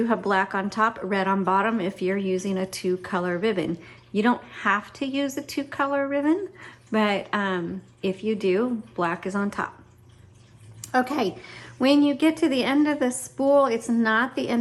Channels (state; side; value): identical; both; correlation 1.00